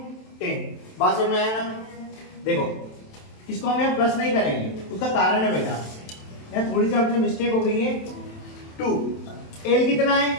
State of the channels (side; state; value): right; late; 27 ms